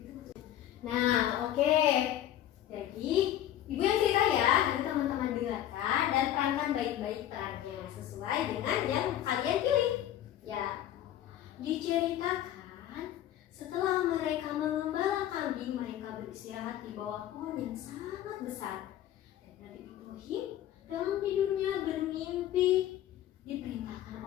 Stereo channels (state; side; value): quieter; right; 12.1 dB